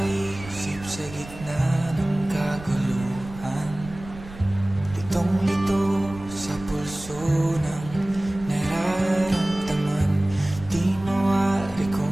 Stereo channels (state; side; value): noise; right; rumble, 15 dB below the sound